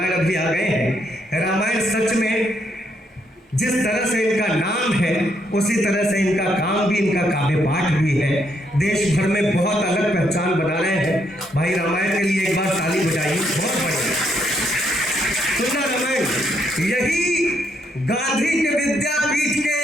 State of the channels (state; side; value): normal; both; correlation 0.74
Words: अभी आ गए हैं। रामायण सच में जिस तरह से इनका नाम है उसी तरह से इनका काम भी, इनका काव्य पाठ भी है। देश भर में बहुत अलग पहचान बना रहे हैं। भाई रामायण के लिए एक बार ताली बजाइए, बहुत बढ़िया। सुना रामायण, यही गांधी के विद्यापीठ